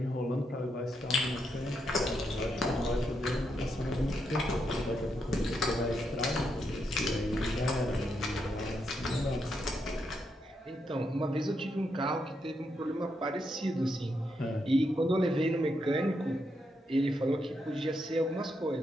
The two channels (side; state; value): both; normal; correlation 0.81